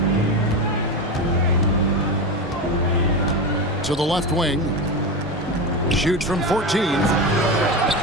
To the left wing. Shoots from 14.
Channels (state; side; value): normal; both; correlation 0.19